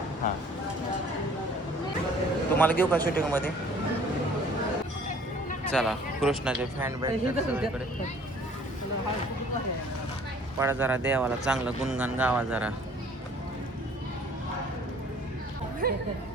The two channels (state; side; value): normal; both; correlation 0.54